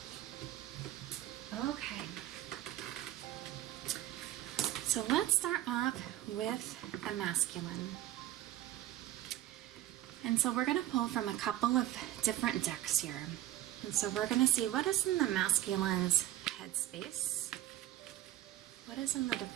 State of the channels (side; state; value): left; quieter; 14.1 dB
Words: Okay, so let's start off with the masculine. And so we're going to pull from a couple of different decks here. And so we're going to see what is in the masculine's headspace. What is in the